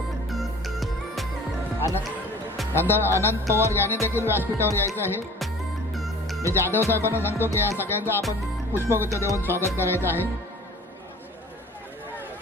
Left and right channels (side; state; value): both; normal; correlation 0.46